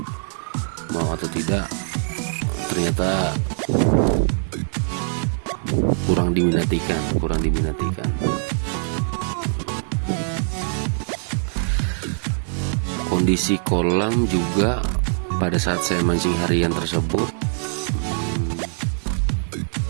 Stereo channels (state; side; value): silent; left; 58 dB below the other